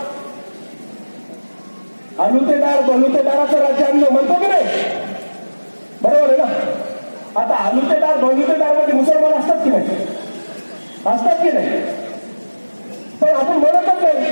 अलुतेदार बलुतेदाराचं राज्य आणलं म्हणतो की नाही? बरोबर आहे ना? आता अलुतेदार बलुतेदार मध्ये मुसलमान असतात की नाही? असतात की नाही? पण आपण म्हणतच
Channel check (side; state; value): both; inverted; correlation -1.00